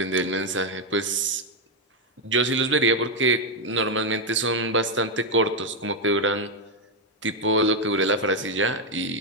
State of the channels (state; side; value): normal; both; correlation 0.02